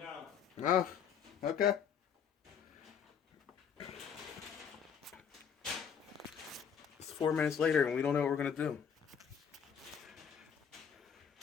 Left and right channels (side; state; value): right; quieter; 7.5 dB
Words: Oh, okay. It's 4 minutes later and we don't know what we're gonna do.